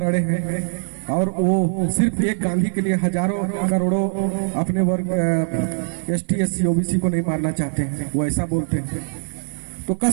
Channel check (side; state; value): left; silent; 56 dB below the other